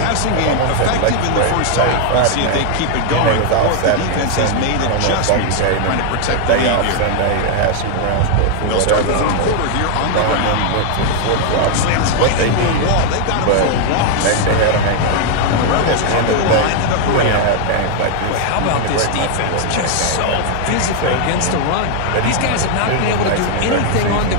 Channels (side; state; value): both; different; correlation 0.00